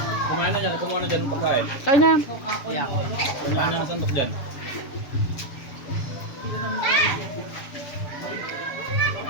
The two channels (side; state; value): right; late; 7.1 ms